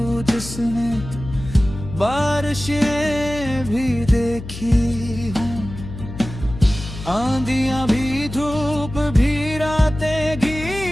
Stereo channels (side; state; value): left; noise; hum, 11 dB below the sound